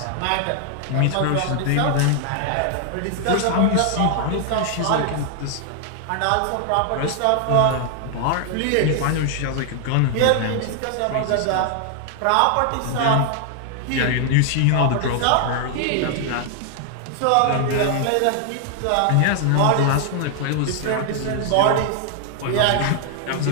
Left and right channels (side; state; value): both; different; correlation 0.00